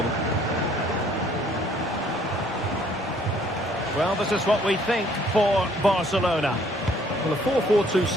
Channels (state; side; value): normal; both; correlation 0.61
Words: Well, this is what we think for Barcelona. Well, the 4-4-2